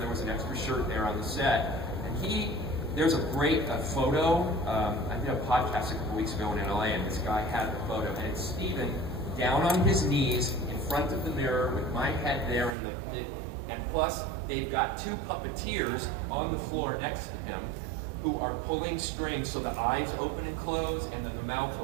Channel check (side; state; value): left; drops out; at 12.8 s